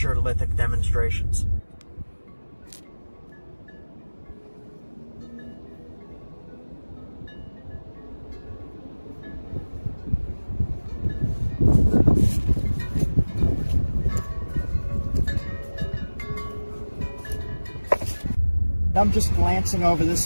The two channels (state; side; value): inverted; both; correlation -1.00